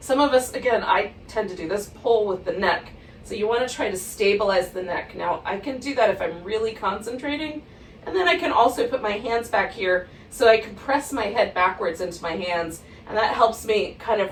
of us, again, I tend to do this, pull with the neck. So you want to try to stabilize the neck. Now, I can do that if I'm really concentrating. And then I can also put my hands back here so I can press my head backwards into my hands. And that helps me kind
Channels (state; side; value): identical; both; correlation 1.00